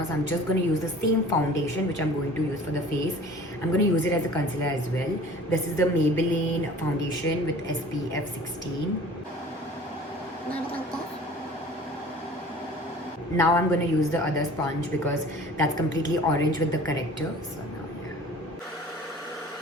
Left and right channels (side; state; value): both; normal; correlation 0.46